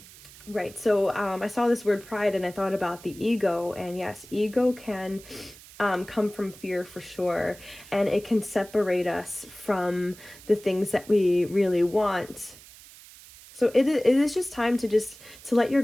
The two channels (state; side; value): noise; right; hiss, 20 dB below the sound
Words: Right. So I saw this word pride and I thought about the ego, and yes, ego can come from fear for sure, and it can separate us from the things that we really want. So it is just time to let your